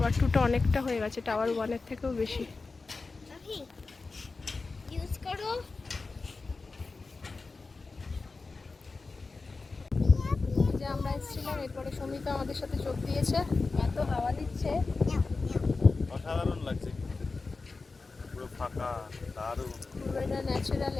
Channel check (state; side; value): quieter; right; 4.0 dB